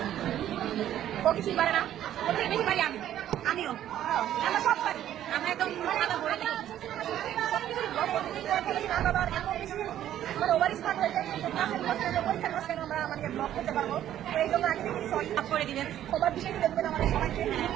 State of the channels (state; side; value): quieter; left; 11.7 dB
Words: ও কিছুই পারে না, ওর থেকে বেশি পারি আমিও, আমরা সব পারি। আমরা একদম খাতা ভরে দিই সবকিছু ব্লগ করতে না বাবার এমন বেশি মানে ওভার স্মার্ট হয়ে যায়, পরীক্ষার মাঝখানে আমরা আমাদের ব্লগ করতে পারবো। তো এই জন্য আগে থেকে সরি করে দিবেন, সবার বিষয়টি দেখবেন আমাদের সবাইকে।